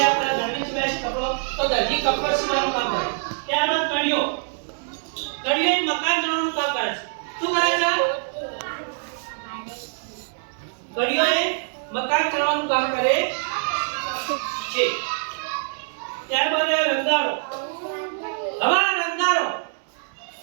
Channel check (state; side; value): silent; left; 62 dB below the other